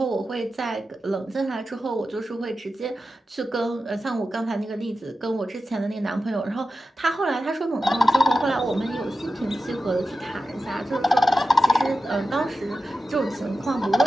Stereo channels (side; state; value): both; normal; correlation 0.91